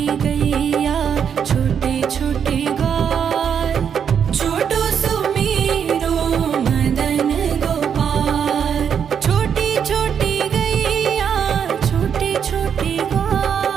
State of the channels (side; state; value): left; quieter; 7.7 dB